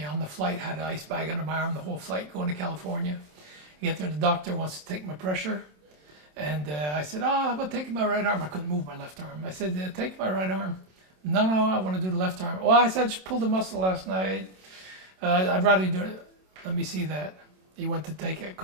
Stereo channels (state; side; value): late; left; 27 ms